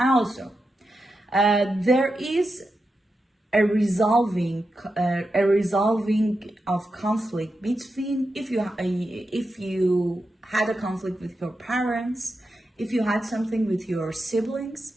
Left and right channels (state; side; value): normal; both; correlation 0.88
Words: also, there is a resolving of conflict between, if you had a conflict with your parents, if you had something with your